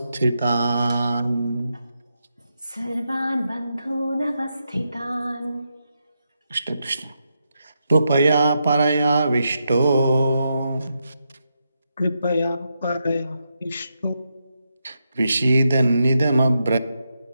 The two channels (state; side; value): inverted; both; correlation -0.84